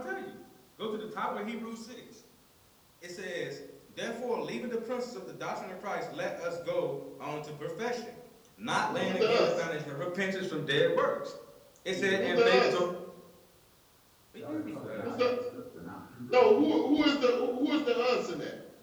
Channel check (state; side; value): identical; both; correlation 1.00